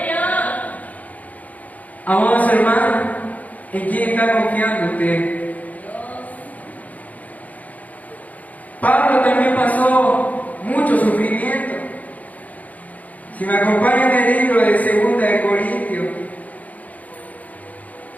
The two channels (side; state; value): right; late; 0.075 ms